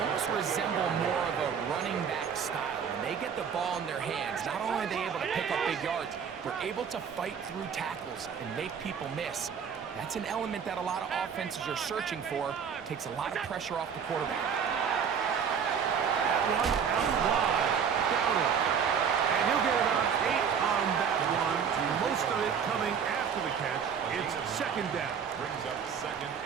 resemble more of a running back style. When they get the ball in their hands, not only are they able to pick up big yards, they're able to fight through tackles and make people miss. That's an element that a lot of offenses are searching for. Takes a lot of pressure off the quarterback. That one out wide. Downer. And he'll get about 8 on that one. Most of it coming after the catch. It's 2nd down. Brings up 2nd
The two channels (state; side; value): quieter; left; 7.1 dB